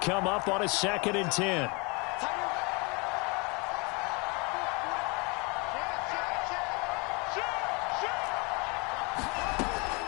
up on a 2nd and 10.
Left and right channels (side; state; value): right; quieter; 29.9 dB